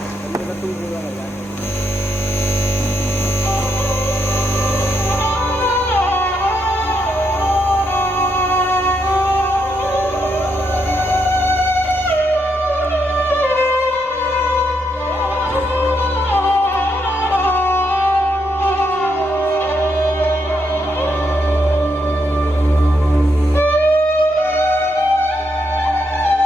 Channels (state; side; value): normal; both; correlation 0.79